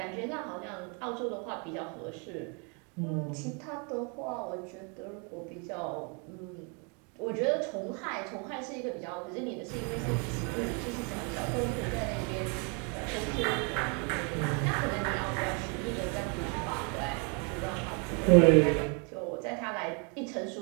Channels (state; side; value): quieter; left; 35.7 dB